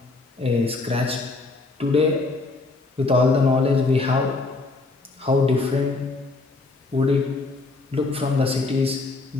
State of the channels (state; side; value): quieter; right; 3.5 dB